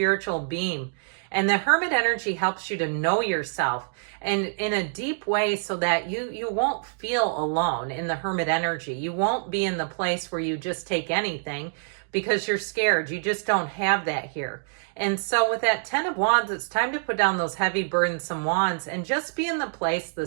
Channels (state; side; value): silent; left; digital silence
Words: beam. And the Hermit energy helps you to know yourself and in a deep way so that you won't feel alone in the Hermit energy. You won't be in the place where you just take anything because you're scared. You just don't have that here. And so with that 10 of Wands, it's time to put down those heavy, burdensome wands and just be in the place, the